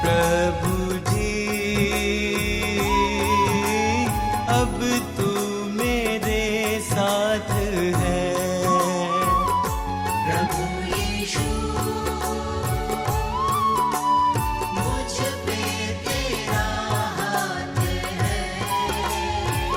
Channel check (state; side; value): identical; both; correlation 1.00